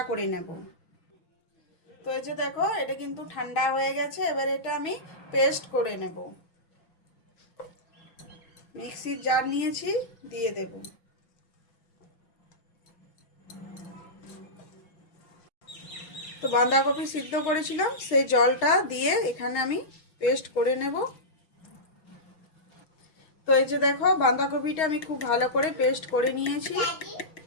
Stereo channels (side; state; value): right; late; 6.4 ms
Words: করে নেব। তো এই যে দেখো এটা কিন্তু ঠান্ডা হয়ে গেছে। এবার এটা আমি পেস্ট করে নেব। মিক্সির জার নিয়েছি, দিয়ে দেব। তো বাঁধাকপি সিদ্ধ করেছিলাম সেই জলটা দিয়ে এখানে আমি পেস্ট করে নেব। তো এই যে দেখো বাঁধাকপিটা আমি খুব ভালো করে পেস্ট করে নিয়েছি।